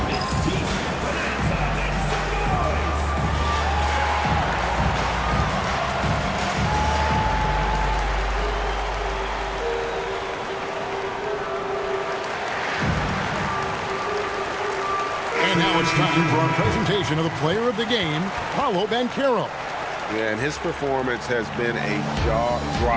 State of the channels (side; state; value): both; identical; correlation 1.00